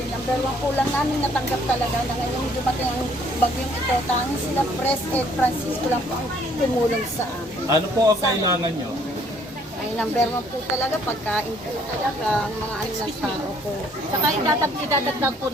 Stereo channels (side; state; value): both; normal; correlation 0.62